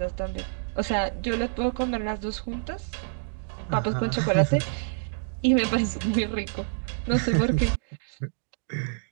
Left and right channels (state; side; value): silent; left; digital silence